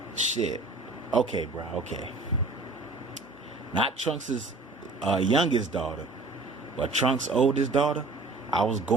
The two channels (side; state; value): left; quieter; 3.4 dB